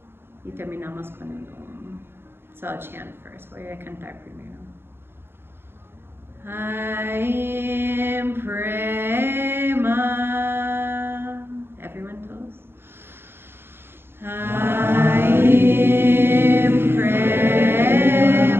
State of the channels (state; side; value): late; left; 0.11 ms